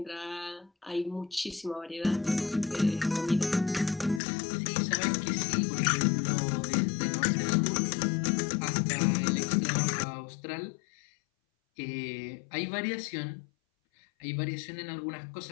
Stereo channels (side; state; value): right; drops out; at 4.2 s